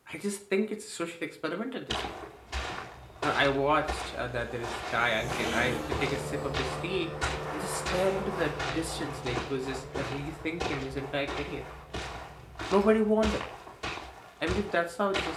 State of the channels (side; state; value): both; identical; correlation 1.00